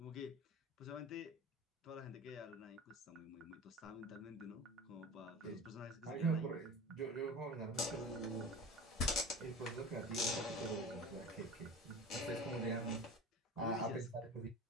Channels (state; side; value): normal; both; correlation 0.34